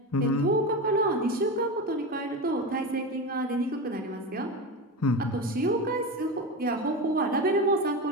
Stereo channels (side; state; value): both; normal; correlation 0.21